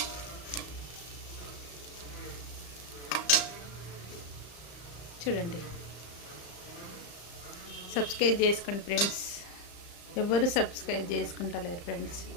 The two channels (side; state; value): right; late; 35 ms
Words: చూడండి, సబ్స్క్రైబ్ చేసుకోండి ఫ్రెండ్స్. ఎవరు సబ్స్క్రైబ్ చేసుకుంటలేరు ఫ్రెండ్స్.